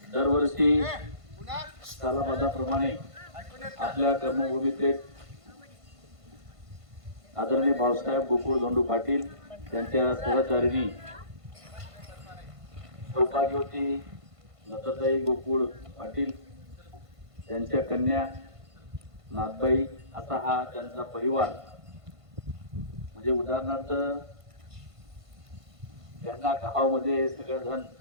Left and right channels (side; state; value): left; late; 1.5 ms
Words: दरवर्षी सालाबादाप्रमाणे आपल्या कर्मभूमीचे आदरणीय भाऊसाहेब गोकुळ धोंडू पाटील यांच्या सहचारिणी सौभाग्यवती लताताई गोकुळ पाटील त्यांच्या कन्या नाथबाई असा हा त्यांचा परिवार, म्हणजे उदाहरणार्थ त्यांना गावामध्ये सगळेजण